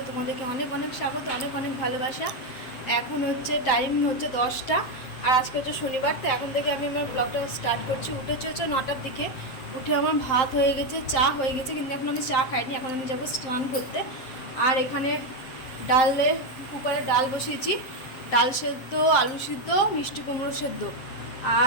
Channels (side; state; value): right; late; 7.6 ms